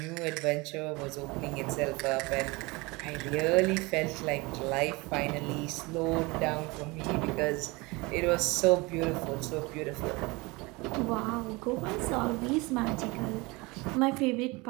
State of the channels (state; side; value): quieter; left; 24.8 dB